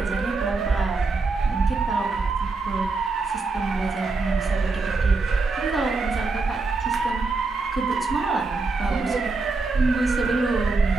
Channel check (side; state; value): left; quieter; 3.8 dB